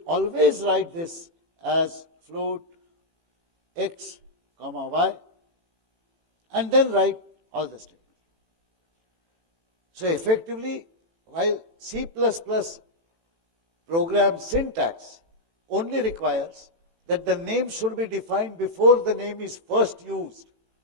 always write this as float X, comma Y, and then write all the statements. So effectively, while C++ program syntax only requires that the name should be defined before the name is first used,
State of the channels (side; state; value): left; late; 18 ms